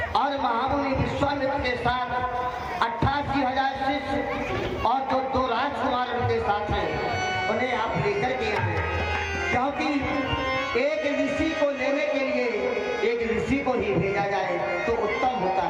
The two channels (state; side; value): identical; both; correlation 1.00